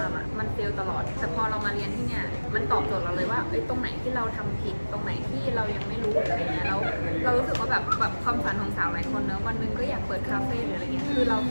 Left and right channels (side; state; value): both; inverted; correlation -1.00